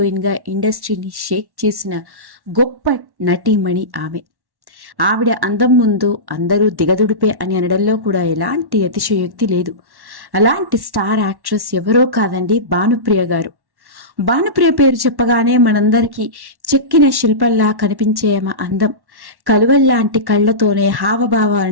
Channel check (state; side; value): late; left; 1.1 ms